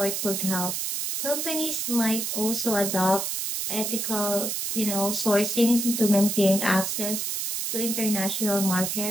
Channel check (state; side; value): noise; right; hiss, 2 dB below the sound